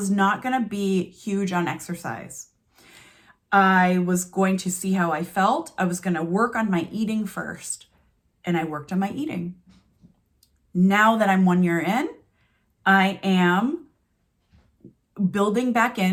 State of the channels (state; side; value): identical; both; correlation 1.00